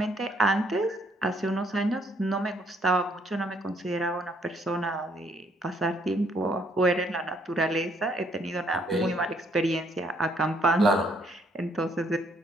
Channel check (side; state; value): both; normal; correlation 0.68